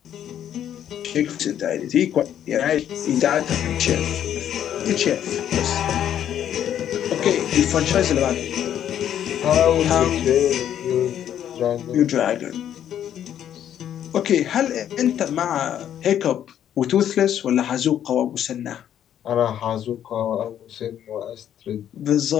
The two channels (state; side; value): quieter; right; 10.2 dB